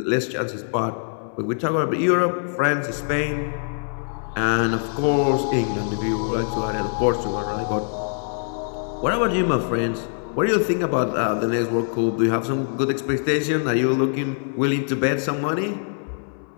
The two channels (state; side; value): silent; right; 63 dB below the other